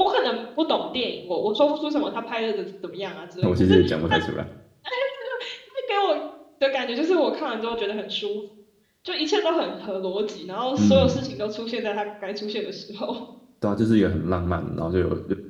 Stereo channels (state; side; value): identical; both; correlation 1.00